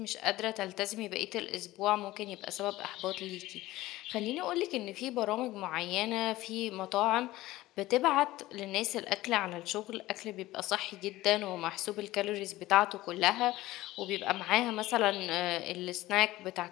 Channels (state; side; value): quieter; right; 17.2 dB